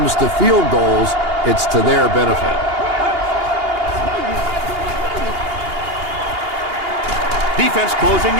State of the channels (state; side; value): late; left; 2.8 ms